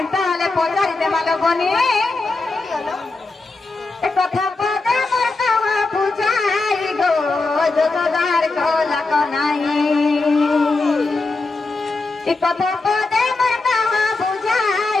हले पचारी देवा लोगने ए कथा पदे मोर कहा बुझाई गो जोदार को लको नहीं ए कथा पदे मोर कहा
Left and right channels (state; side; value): quieter; right; 3.5 dB